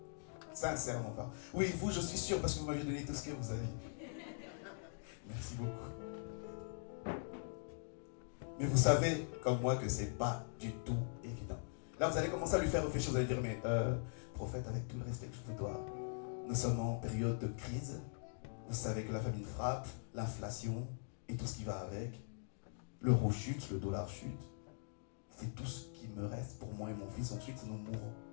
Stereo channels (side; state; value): right; silent; digital silence